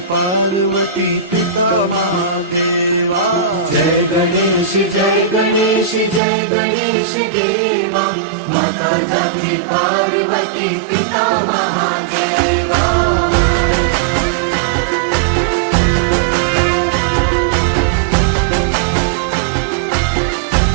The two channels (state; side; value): drops out; left; at 6.2 s